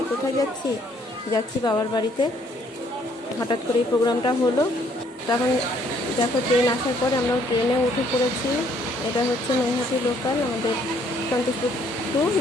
কোথায় যাচ্ছি? যাচ্ছি বাবার বাড়িতে। হঠাৎ করে এই প্রোগ্রামটা হলো, তখন দেখো ট্রেন আসার পরে আমরা ট্রেনে উঠে পড়েছি। এটা হচ্ছে নৈহাটি লোকাল, আমাদের সন্তোষপুর টু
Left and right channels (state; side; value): normal; both; correlation 0.65